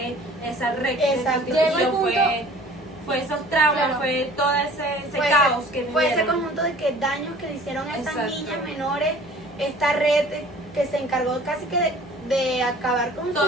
esa red Exacto. de Llegó el prostitución, fue esos traumas, Claro. fue todo ese Fue caos ese- que fue ese vivieron. conjunto de que daños que le hicieron a estas Exacto. niñas menores, esta red que se encargó casi que de acabar con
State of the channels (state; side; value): noise; left; hum, 20 dB below the sound